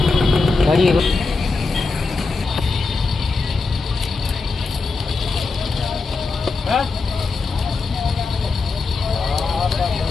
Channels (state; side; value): quieter; right; 4.0 dB